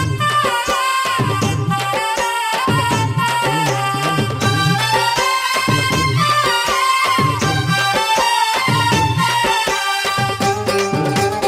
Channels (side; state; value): both; identical; correlation 1.00